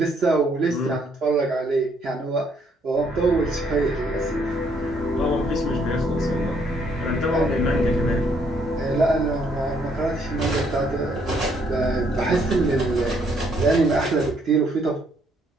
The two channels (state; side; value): normal; both; correlation 0.69